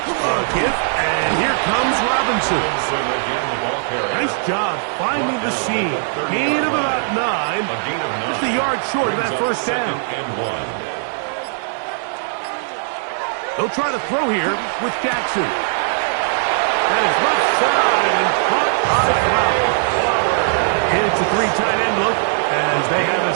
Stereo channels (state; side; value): silent; left; digital silence